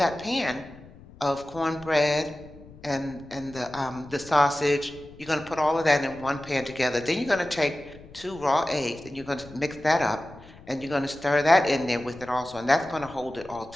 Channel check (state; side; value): noise; left; rumble, 20 dB below the sound